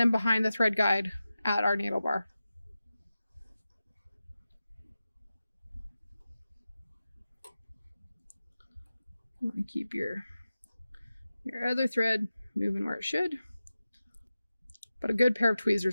behind the thread guide at our needle bar. You want to keep your other thread moving where it should. But a good pair of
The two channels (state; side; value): inverted; both; correlation -0.94